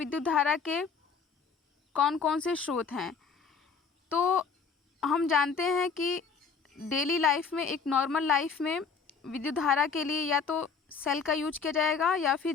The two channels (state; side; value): quieter; right; 5.5 dB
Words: धारा के कौन कौन से स्रोत हैं। तो हम जानते हैं कि डेली लाइफ में, एक नॉर्मल लाइफ में विद्युत धारा के लिए या तो सेल का यूज किया जाएगा या फिर